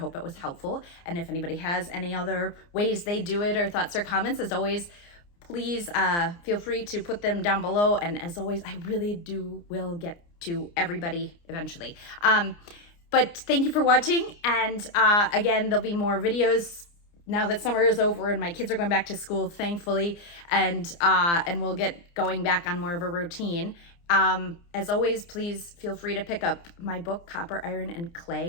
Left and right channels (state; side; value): late; right; 29 ms